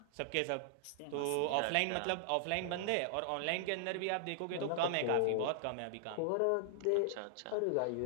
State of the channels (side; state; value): both; different; correlation -0.01